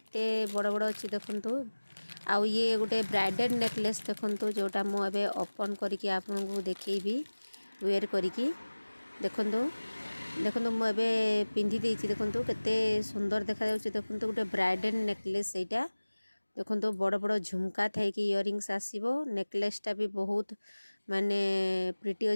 बड़ बड़ अच्छी। देखंतु आउ ये गोटे ब्राइडल नेकलेस देखंतु जोटा मु एबे ओपन करिकि आपन को देखैबी वेयर करिकि। देखंतु देखंतु मु एबे पिंधि देछि। देखंतु केते सुंदर देखा जाउछि। देखंतु गोटे ब्राइडल नेकलेस एटा। देखो बड़ बड़ झुमका थे कि इयरिंग्स आसीबो। नेकलेसटा भी बहुत माने प्रिटी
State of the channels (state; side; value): inverted; both; correlation -1.00